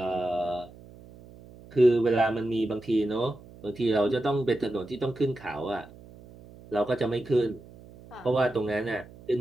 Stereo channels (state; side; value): noise; right; hum, 20 dB below the sound